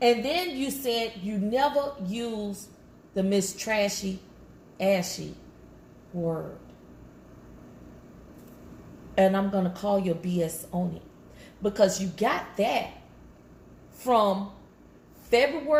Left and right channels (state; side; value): identical; both; correlation 1.00